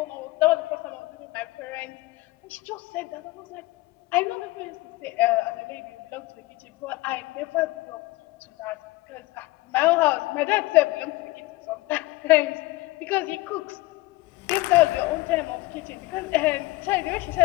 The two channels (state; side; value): quieter; right; 20.2 dB